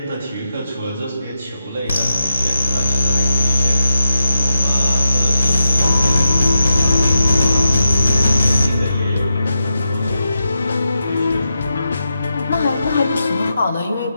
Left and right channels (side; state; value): both; inverted; correlation -0.87